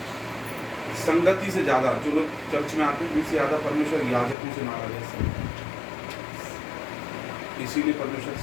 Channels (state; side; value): drops out; right; at 4.4 s